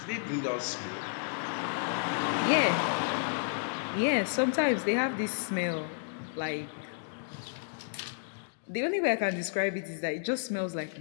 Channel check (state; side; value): silent; right; digital silence